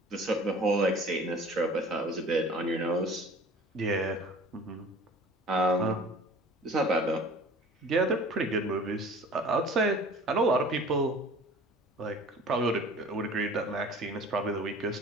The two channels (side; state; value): both; normal; correlation 0.45